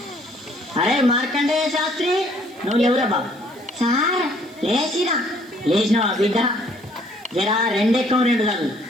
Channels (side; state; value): right; noise; hiss, 29 dB below the sound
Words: అరే మార్కండేయ శాస్త్రి, నువ్వు ఎవరా బాబు? సార్ లేచినావా బిడ్డ? జరా రెండెక్కం రెండు చదువు.